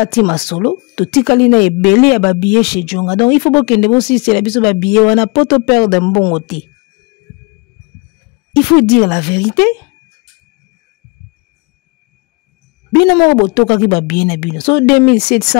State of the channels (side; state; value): right; quieter; 29.7 dB